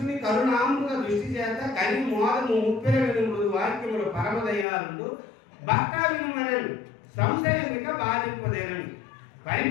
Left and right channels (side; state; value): right; drops out; at 4.7 s